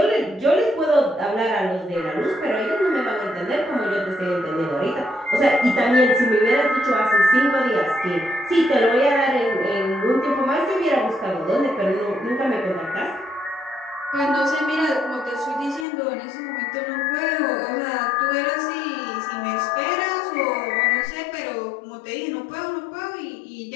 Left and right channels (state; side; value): drops out; right; at 15.9 s